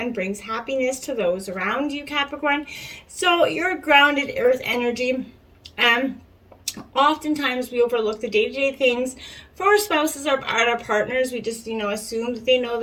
brings happiness to those around you, Capricorn. So you're grounded earth energy. Oftentimes we overlook the day-to-day things for our spouses or our partners. We just, assume that they know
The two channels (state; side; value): identical; both; correlation 1.00